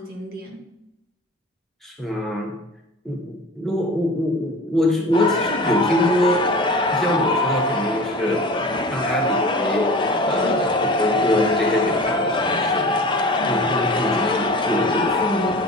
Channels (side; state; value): both; normal; correlation 0.37